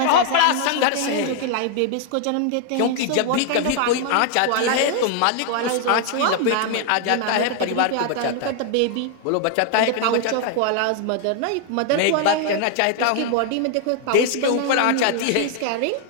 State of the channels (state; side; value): different; both; correlation 0.00